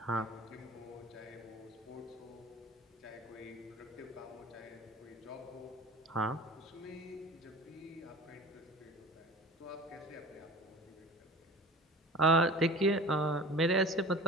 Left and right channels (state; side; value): normal; both; correlation 0.39